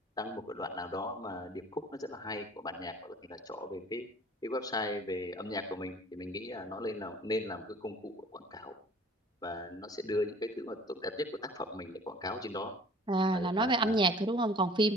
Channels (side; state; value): both; normal; correlation 0.50